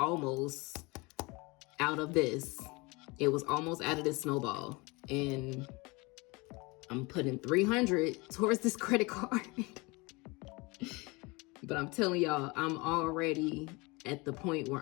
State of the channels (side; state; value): right; quieter; 25.8 dB